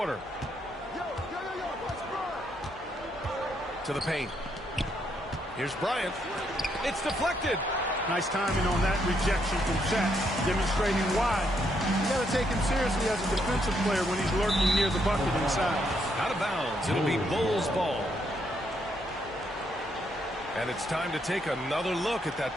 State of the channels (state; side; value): normal; both; correlation 0.75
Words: To the paint. Here's Bryant. It's deflected. Nice timing on that rejection from Shaq, demonstrating why. You got to take him seriously as a defensive player when he's lurking near the bucket inside. Out of bounds. It'll be Bulls ball. And it's time to take another look at that